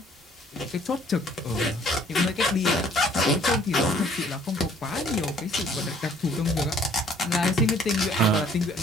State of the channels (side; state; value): both; normal; correlation 0.58